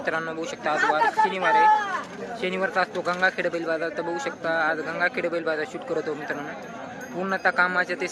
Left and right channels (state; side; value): identical; both; correlation 1.00